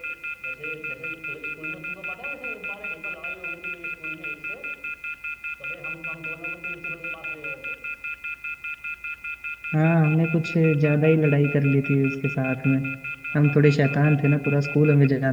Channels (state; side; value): identical; both; correlation 1.00